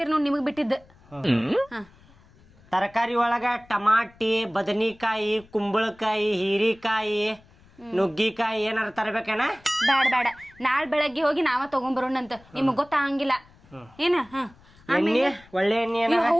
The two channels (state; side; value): noise; left; rumble, 27 dB below the sound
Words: ನೋಡಿ, ನಿಮಗೆ ಬಿಟ್ಟಿದ್ದು. ತರಕಾರಿ ಒಳಗ ಟಮಾಟಿ, ಬದನಿಕಾಯಿ, ಕುಂಬಳಕಾಯಿ, ಹೀರಿಕಾಯಿ, ನುಗ್ಗಿಕಾಯಿ ಏನಾರ ತರಬೇಕೇನ? ಬೇಡ ನಾಳೆ ಬೆಳಗ್ಗೆ ಹೋಗಿ ನಾವ ತಗೊಂಡ್ಬರೋಣಂತ, ನಿಮಗ್ ಗೊತ್ತಾಗಂಗಿಲ್ಲ ಏನ. ಎಣ್ಣೆ, ಒಳ್ಳೆ ಎಣ್ಣೆ.